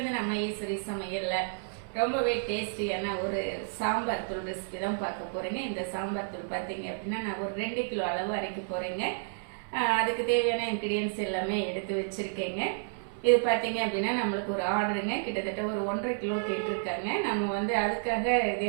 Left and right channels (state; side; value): silent; left; 57 dB below the other